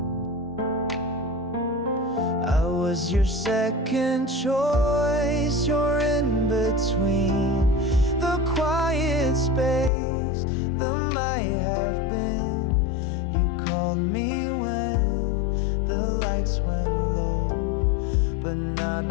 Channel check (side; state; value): right; drops out; at 9.9 s